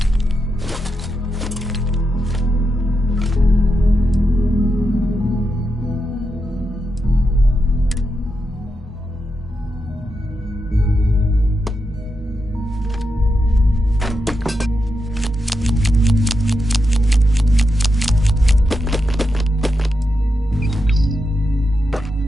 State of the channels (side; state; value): both; normal; correlation 0.86